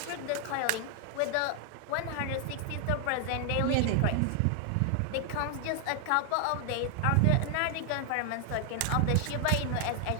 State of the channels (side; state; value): both; different; correlation 0.00